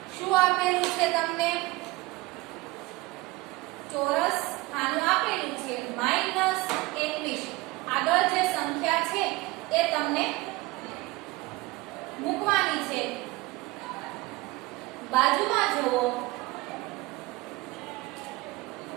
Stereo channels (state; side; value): quieter; left; 21.4 dB